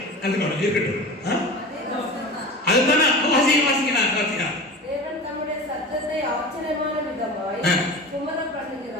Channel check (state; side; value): normal; both; correlation 0.32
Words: அதுக்கு இருக்கட்டும். அதுதானே வாசிக்கலாம். தேவன் தம்முடைய சத்தத்தை ஆச்சரியமான விதமாய் சுமரப்